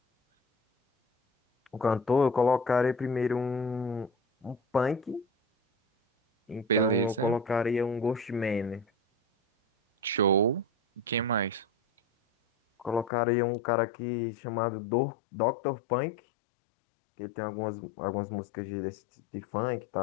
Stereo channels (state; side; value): drops out; right; at 13.1 s